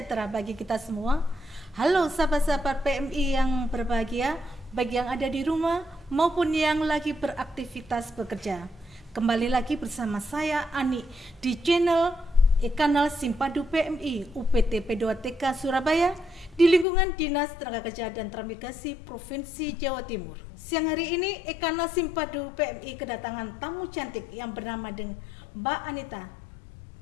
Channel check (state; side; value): drops out; right; at 16.9 s